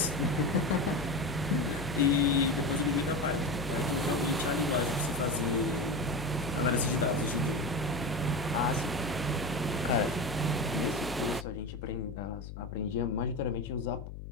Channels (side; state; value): left; noise; hum, 10 dB below the sound